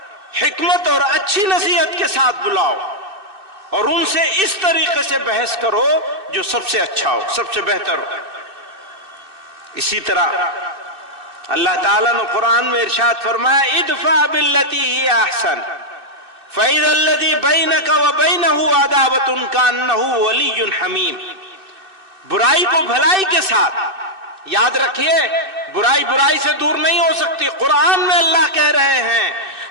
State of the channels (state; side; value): late; left; 2.6 ms